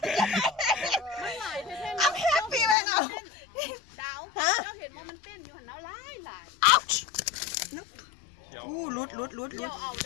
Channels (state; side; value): drops out; right; at 2.8 s